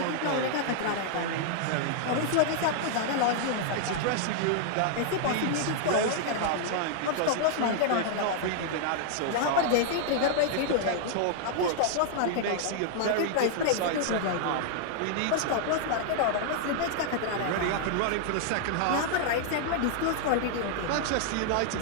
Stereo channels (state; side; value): different; both; correlation -0.01